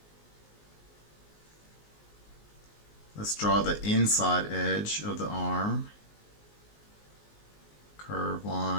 Let's draw the inside edge of the arm. Curved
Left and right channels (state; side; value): late; right; 19 ms